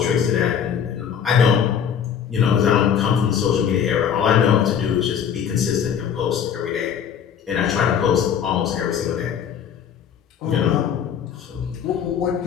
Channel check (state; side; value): quieter; right; 8.1 dB